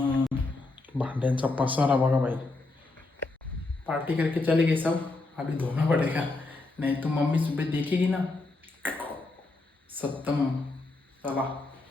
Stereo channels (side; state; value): right; quieter; 3.2 dB